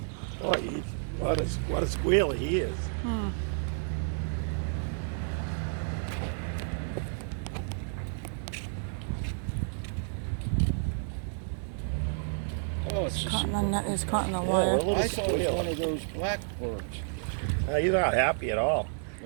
Boy, what a squealer he is. Oh, it's just, Caught in the net is caught in the Yeah, wire. a little I thought it was squeal. one of those blackbirds. You're not happy at all.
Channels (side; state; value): left; silent; digital silence